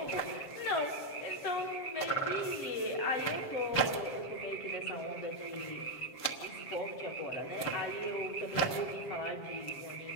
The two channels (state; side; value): late; right; 7.4 ms